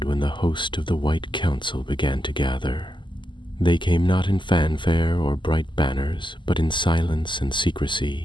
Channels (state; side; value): late; right; 0.23 ms